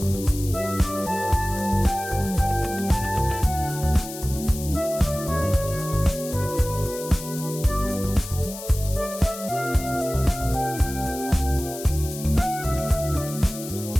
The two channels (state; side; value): noise; left; hiss, 12 dB below the sound